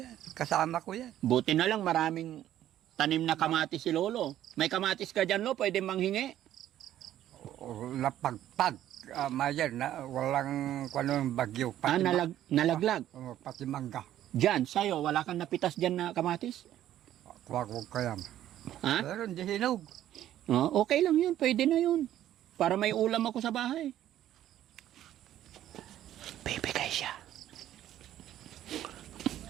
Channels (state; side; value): quieter; left; 12.3 dB